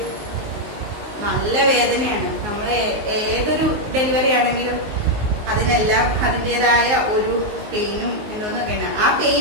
നല്ല വേദനയാണ്. നമ്മൾ ഏതൊരു ഡെലിവറി ആണെങ്കിലും അതിനെല്ലാം അതിൻ്റെതായ ഒരു പെയിനും എന്തോന്നൊക്കെയാണ്. ആ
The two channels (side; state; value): left; late; 19 ms